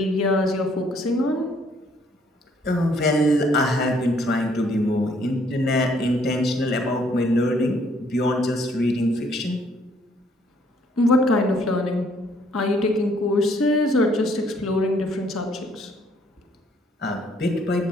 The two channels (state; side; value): normal; both; correlation 0.65